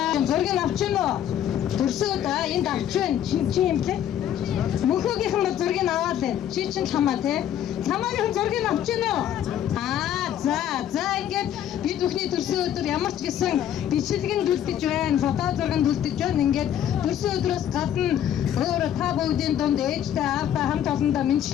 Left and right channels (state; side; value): quieter; right; 10.5 dB